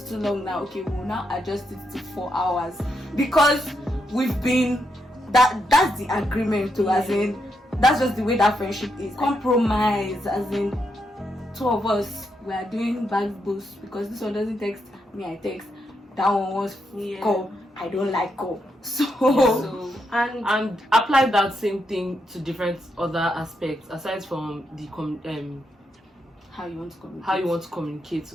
too long now. Okay, we'll now adjust it to 4 hours because we've been that's the agreement too, as in that's just the way that friendship is. Compromise, as in 2 of us we are doing back boost because this one doesn't text me, I text. That one wants call. I don't like call. So and apply that same thing to different other aspects aside from the how you want to communicate.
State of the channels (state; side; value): normal; both; correlation 0.81